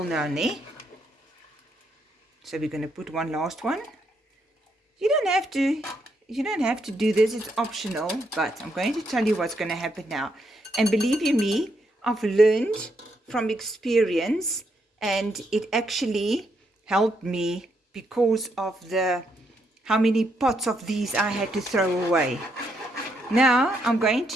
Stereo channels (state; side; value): normal; both; correlation 0.77